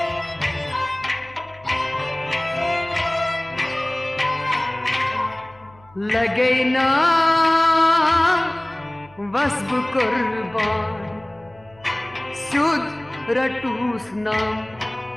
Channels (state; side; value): noise; left; hum, 27 dB below the sound